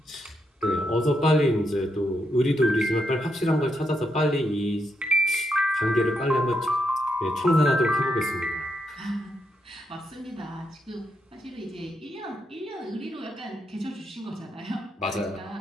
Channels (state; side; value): normal; both; correlation 0.81